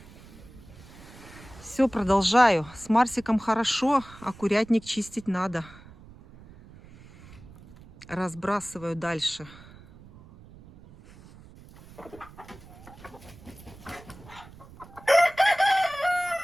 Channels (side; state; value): right; noise; rumble, 20 dB below the sound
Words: Все, продолжаю. С Марсиком хорошо, а курятник чистить надо. Разбрасываю дальше.